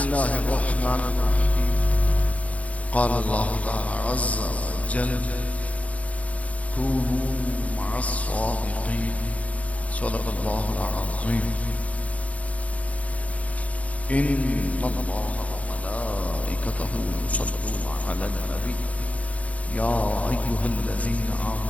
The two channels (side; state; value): right; late; 0.067 ms